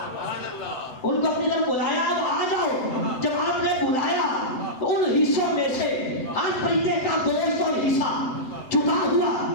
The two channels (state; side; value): late; right; 7.8 ms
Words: ان کو اپنی طرف بلایا اب آ جاؤ۔ جب آپ نے بلایا تو ان حصوں میں سے ہر پرندے کا گوشت اور حصہ جدا ہوا،